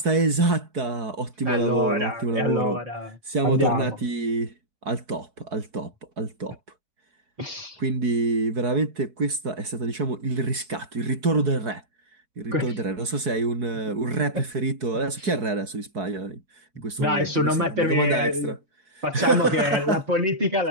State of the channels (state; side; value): late; left; 4.7 ms